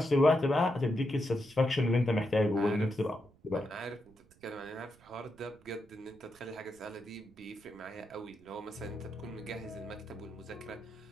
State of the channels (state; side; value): noise; right; rumble, 27 dB below the sound